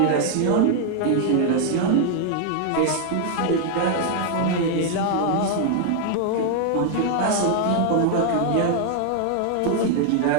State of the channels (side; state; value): both; different; correlation 0.00